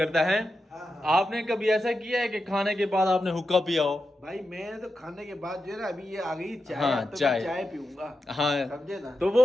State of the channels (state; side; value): normal; both; correlation 0.89